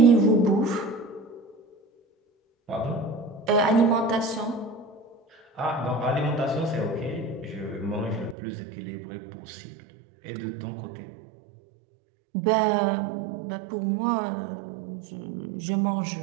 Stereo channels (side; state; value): left; drops out; at 8.3 s